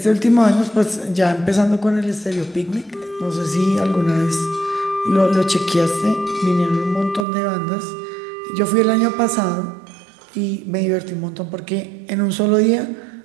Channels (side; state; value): left; drops out; at 7.2 s